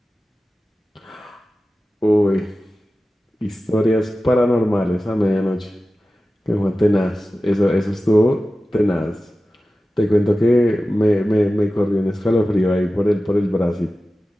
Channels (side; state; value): both; normal; correlation 0.95